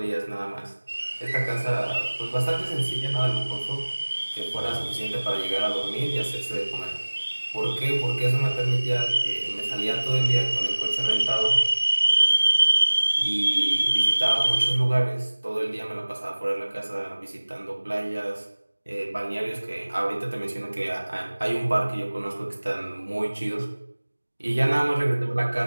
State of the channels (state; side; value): inverted; both; correlation -1.00